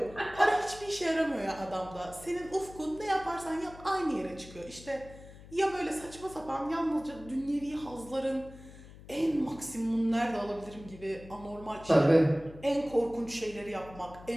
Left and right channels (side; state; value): left; noise; hum, 18 dB below the sound